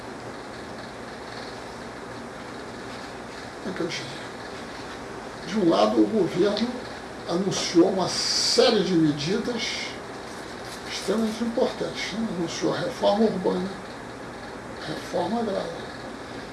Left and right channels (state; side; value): identical; both; correlation 1.00